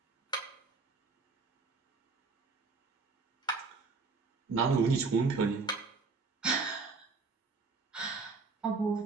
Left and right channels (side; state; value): left; quieter; 4.3 dB